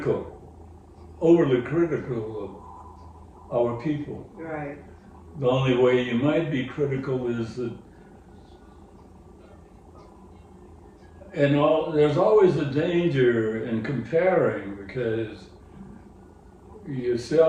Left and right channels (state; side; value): identical; both; correlation 1.00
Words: overly critical of our people. Right. The only way you might be critical is that, there's always a danger in comparing, because